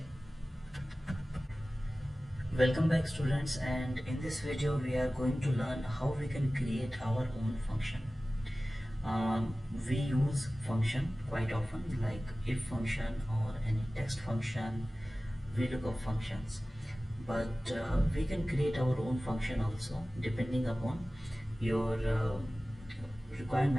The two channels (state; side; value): normal; both; correlation 0.97